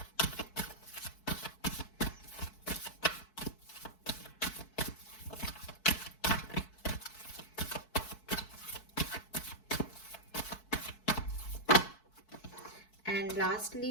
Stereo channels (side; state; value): right; late; 4.6 ms